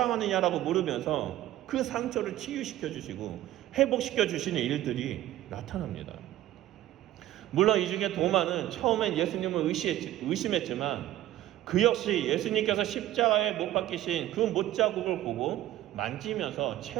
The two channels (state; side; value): quieter; left; 14.0 dB